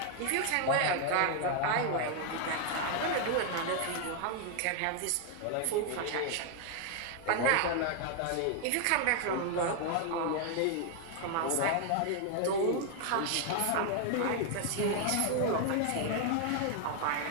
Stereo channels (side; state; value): both; different; correlation 0.00